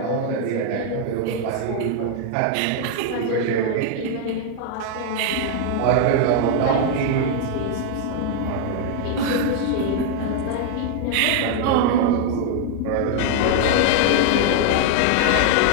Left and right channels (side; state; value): both; different; correlation 0.00